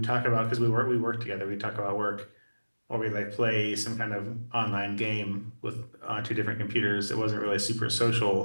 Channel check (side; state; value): both; inverted; correlation -1.00